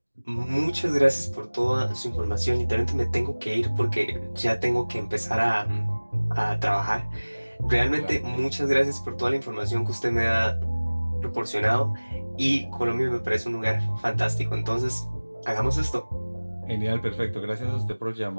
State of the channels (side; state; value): both; inverted; correlation -1.00